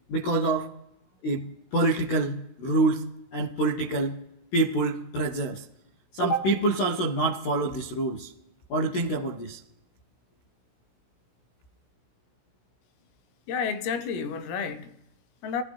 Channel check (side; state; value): right; late; 16 ms